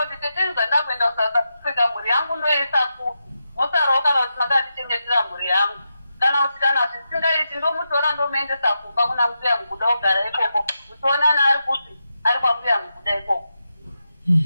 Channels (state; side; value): inverted; both; correlation -0.87